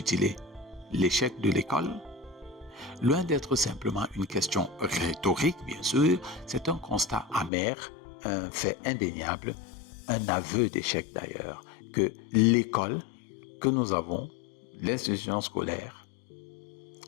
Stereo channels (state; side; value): drops out; right; at 7.5 s